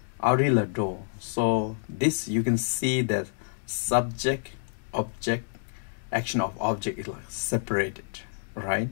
Arila Do. So this you can see that subject, object, action of object is like separated, right?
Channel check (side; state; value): right; silent; digital silence